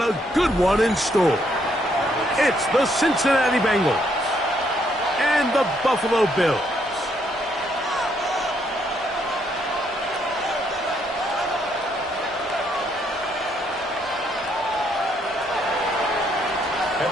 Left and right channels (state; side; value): normal; both; correlation 0.72